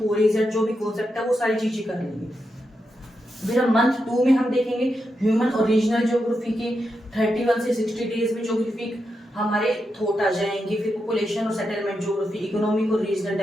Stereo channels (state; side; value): normal; both; correlation 0.86